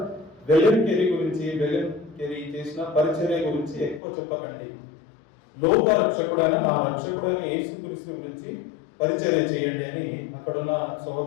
విలియం కేరీ చేసిన పరిచర్య గురించి ఎక్కువ చెప్పకండి. లోక రక్షకుడైన నా రక్షకుడైన యేసుక్రీస్తు గురించి పరిచర్య చేయండి అని అక్కడ ఉన్న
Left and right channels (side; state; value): right; drops out; at 4.0 s